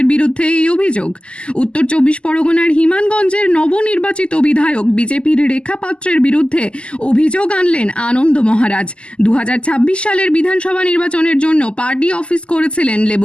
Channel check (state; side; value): late; right; 0.053 ms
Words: বিরুদ্ধে এই অভিযোগ। উত্তর 24 পরগনার হিমানগঞ্জের নবনির্বাচিত বিধায়ক বিজেপির রেখাপাত্রের বিরুদ্ধে অভিযোগ আনলেন আনন্দ মহারাজ। 2026 সালের বিধানসভা নির্বাচনের জন্য পার্টি অফিস করেছিলেন